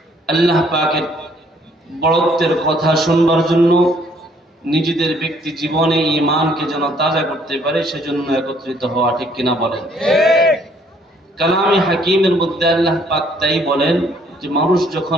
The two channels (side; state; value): both; normal; correlation 0.64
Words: আল্লাহ পাকের বড়ত্বের কথা শুনবার জন্য, নিজেদের ব্যক্তি জীবনে ঈমানকে যেন তাজা করতে পারে সেজন্য একত্রিত হওয়া, ঠিক কিনা বলেন? কালামে হাকিমের মধ্যে আল্লাহ পাক তাই বলেন যে মানুষ